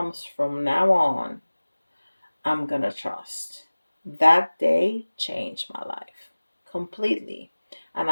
from now on, I'm going to trust. That day changed my life completely. And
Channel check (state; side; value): inverted; both; correlation -1.00